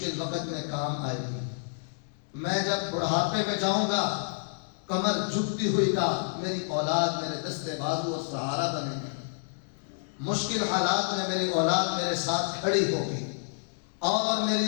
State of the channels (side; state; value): right; silent; digital silence